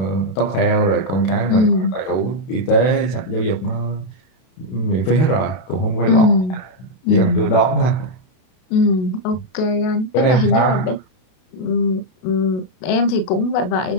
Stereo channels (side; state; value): right; late; 32 ms